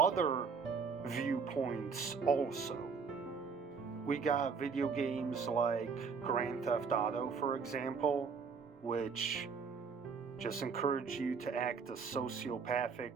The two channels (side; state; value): left; quieter; 5.5 dB